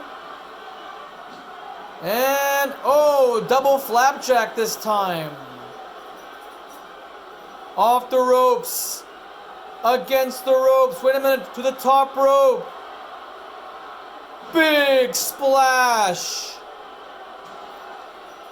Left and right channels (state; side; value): identical; both; correlation 1.00